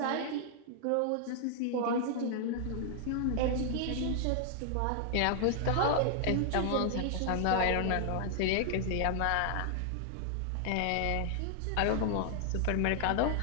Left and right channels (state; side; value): different; both; correlation 0.00